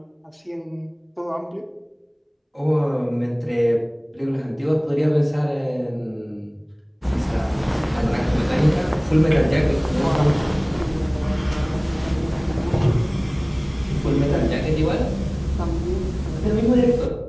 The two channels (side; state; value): both; identical; correlation 1.00